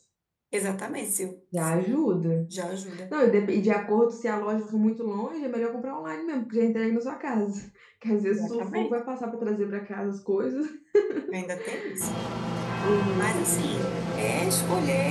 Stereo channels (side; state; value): both; identical; correlation 1.00